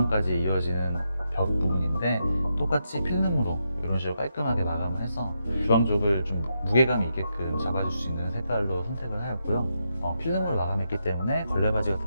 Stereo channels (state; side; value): inverted; both; correlation -0.83